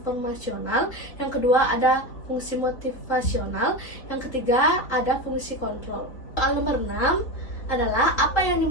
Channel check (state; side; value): late; right; 3.6 ms